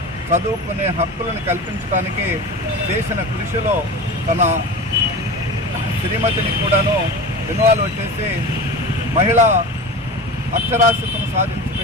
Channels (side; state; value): both; normal; correlation 0.31